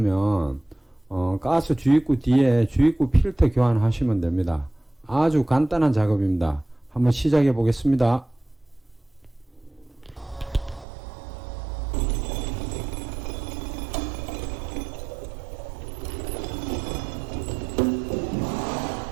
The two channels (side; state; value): left; drops out; at 10.9 s